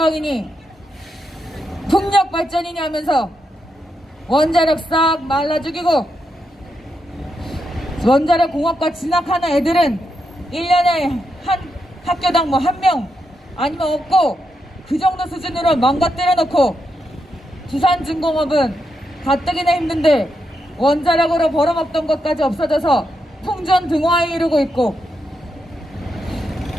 풍력 발전이니 하면서 원자력 싹 말라 죽이고 원자력 공업과 진학하는 애들은 1년에 한 학교당 뭐 1명 아니면 없고 그 정도 수준으로 망가뜨려 놓고 두산중공업은 가뜩이나 힘든데 원자력으로 벌어먹던 것까지 없어져서 풍전등화에 이르고 있고,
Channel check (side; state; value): both; normal; correlation 0.83